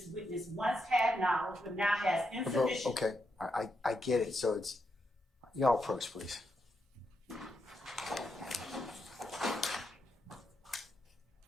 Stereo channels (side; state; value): both; normal; correlation 0.82